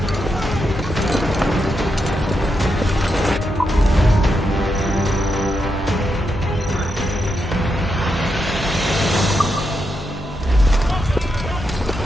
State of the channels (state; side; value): normal; both; correlation 0.84